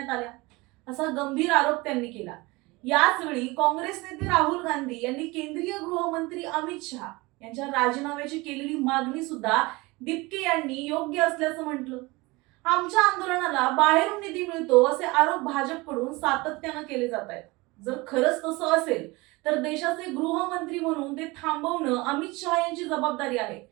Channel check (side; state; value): left; quieter; 23.2 dB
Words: आल्या, असा गंभीर आरोप त्यांनी केला. याच वेळी काँग्रेस नेते राहुल गांधी यांनी केंद्रीय गृहमंत्री अमित शहा यांच्या राजीनाम्याची केलेली मागणी सुद्धा दिपके यांनी योग्य असल्याचं म्हटलं. आमच्या आंदोलनाला बाहेरून निधी मिळतो असे आरोप भाजपकडून सातत्यानं केले जात आहेत. जर खरंच तसं असेल तर देशाचे गृहमंत्री म्हणून ते थांबवणं अमित शहा यांची जबाबदारी आहे.